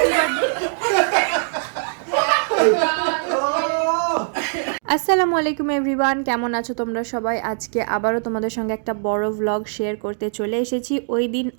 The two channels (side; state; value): left; silent; digital silence